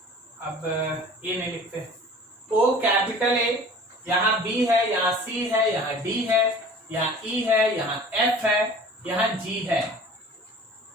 अब ए नहीं लिखते, ओ कैपिटल ए, यहां बी है, यहां सी है, यहां डी है, यहां ई है, यहां एफ है, यहां जी है।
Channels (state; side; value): normal; both; correlation 0.44